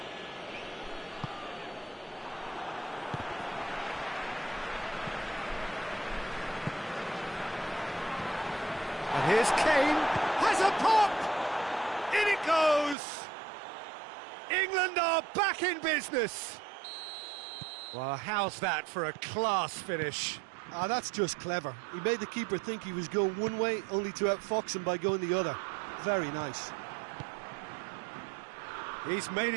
And here's Kane, has a pop! In it goes! England are back in business! Well, how's that for a class finish? Ah, that's just clever. He made the keeper think he was going one way, only to outfox him by going the other. Very nice. He's made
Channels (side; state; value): left; drops out; at 13.0 s